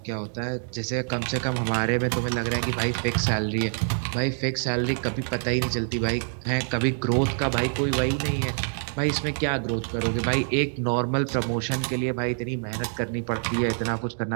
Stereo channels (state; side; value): silent; left; digital silence